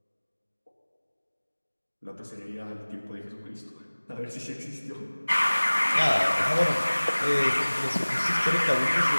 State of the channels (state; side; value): inverted; both; correlation -1.00